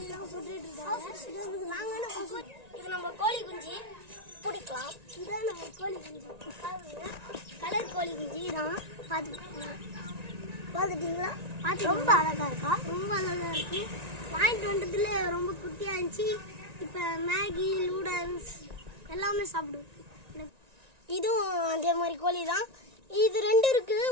சுட்டுட்டு இருக்காங்க. நாங்கள் இது நம்ம கோழி குஞ்சு பிடிக்கலாம். இதான் நம்ம கோழி குஞ்சு. கலர் கோழி குஞ்சு தான். பார்த்துட்டீங்களா? ரொம்ப அழகா இருக்கா? ரொம்ப அழகா இருக்கு. வாங்கிட்டு வந்ததுல ரொம்ப குட்டியா இருந்துச்சு. இப்போ மேகி நூடல்ஸ் எல்லாமே சாப்பிடுவோம். இதுவும் அதே மாதிரி கோழி தான். இது ரெண்டு இருக்குது.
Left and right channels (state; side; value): late; left; 1.9 ms